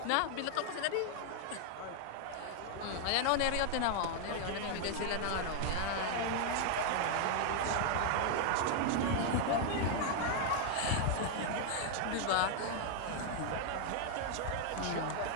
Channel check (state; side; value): different; both; correlation 0.00